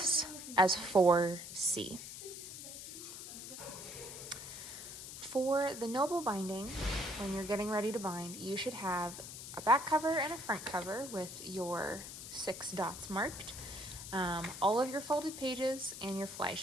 as 4C. For the noble binding, when you're getting ready to bind, you should have a back cover and a front cover with your 6 dots marked, all of your folded pages, and your fly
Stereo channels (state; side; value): noise; left; hiss, 10 dB below the sound